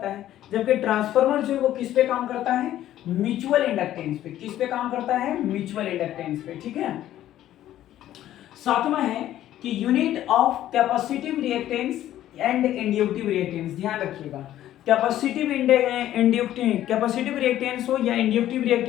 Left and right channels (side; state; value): right; quieter; 12.8 dB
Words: है, जबकि ट्रांसफार्मर जो है वो किस पे काम करता है? म्यूचुअल इंडक्टेंस पे। किस पे काम करता है? म्यूचुअल इंडक्टेंस पे। ठीक है। सातवां है कि unit of capacitive reactance and inductive reactance. ध्यान रखिएगा, कैपेसिटिव कैपेसिटिव रिएक्टेंस हो या इंड्यूक्टिव